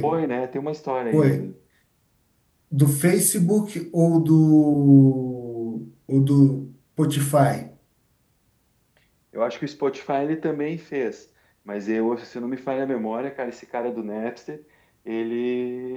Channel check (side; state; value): both; identical; correlation 1.00